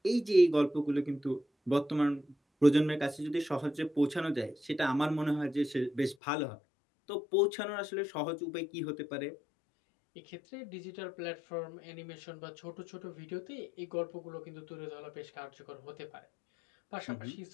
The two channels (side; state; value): right; drops out; at 6.2 s